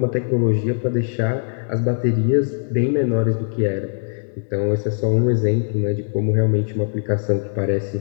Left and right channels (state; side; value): silent; right; digital silence